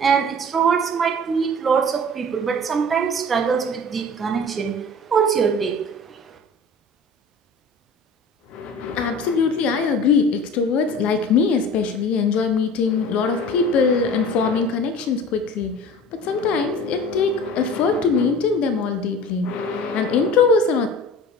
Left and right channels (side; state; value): both; normal; correlation 0.41